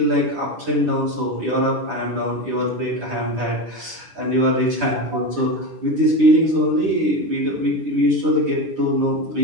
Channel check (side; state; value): left; late; 9.9 ms